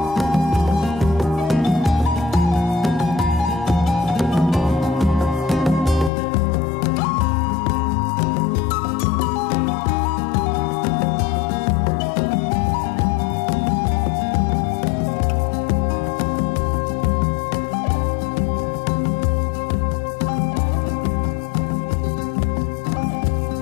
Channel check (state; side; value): drops out; right; at 6.1 s